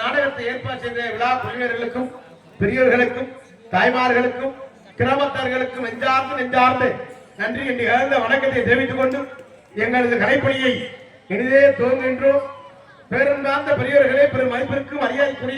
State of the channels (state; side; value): identical; both; correlation 1.00